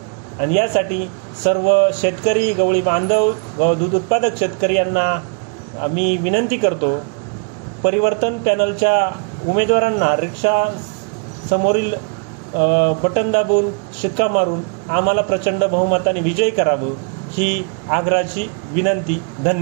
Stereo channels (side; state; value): left; quieter; 37.5 dB